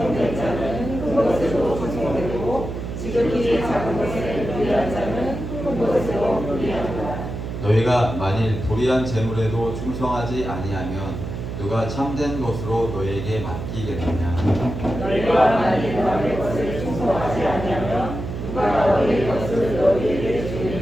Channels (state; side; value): noise; right; hum, 6 dB below the sound